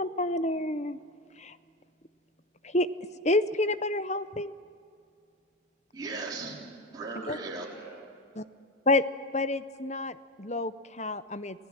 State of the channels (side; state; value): both; normal; correlation 0.21